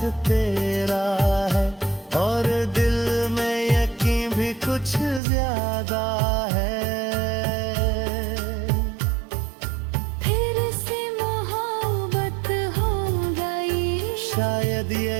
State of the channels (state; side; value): drops out; left; at 5.2 s